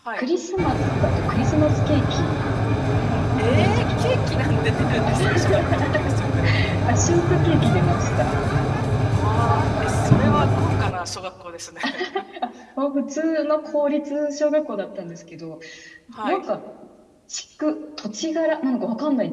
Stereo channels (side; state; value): both; identical; correlation 1.00